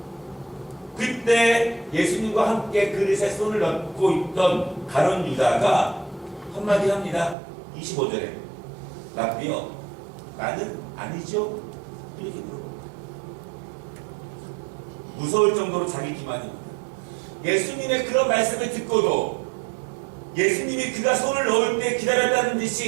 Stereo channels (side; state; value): left; drops out; at 7.4 s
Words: 그때 예수님과 함께 그릇에 손을 얹고 있던 가룟 유다가 한마디 합니다. 25절에 라비여 나는 아니죠? 이렇게 물어봅니다. 무서울 정도로 자기 기만입니다. 예수님의 그런 말씀을 듣고도 예수님이 그가 손을 넣을 때 기다렸다는